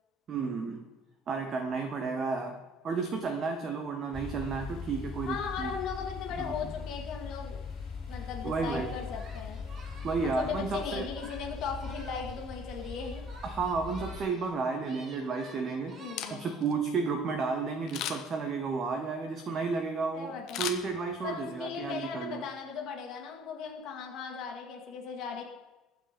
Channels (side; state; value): both; normal; correlation 0.55